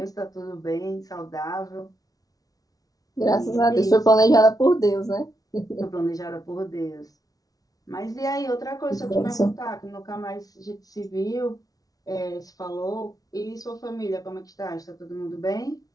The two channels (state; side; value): late; right; 0.18 ms